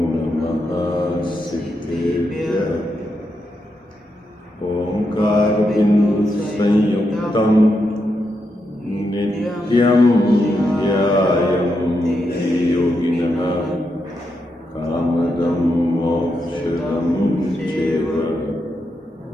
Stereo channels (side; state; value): both; normal; correlation 0.84